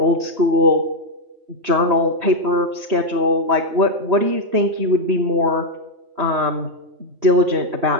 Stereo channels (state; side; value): late; left; 3.2 ms